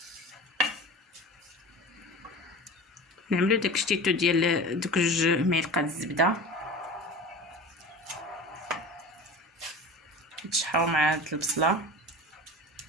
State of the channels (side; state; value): both; normal; correlation 0.35